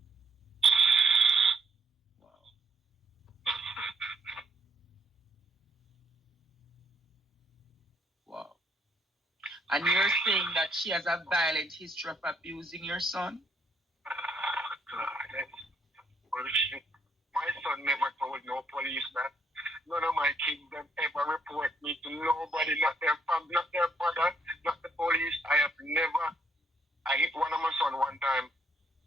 Wow. And you're saying that she has a violent history of abusing your son? God, that's bullshit. My son never told no police that. None of my kids have ever report me to nobody, not their family, not their father, not the police. I hit one of my son one time.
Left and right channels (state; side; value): normal; both; correlation 0.71